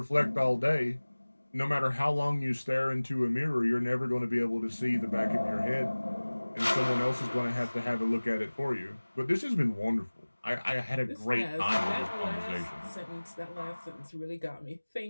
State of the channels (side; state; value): both; inverted; correlation -1.00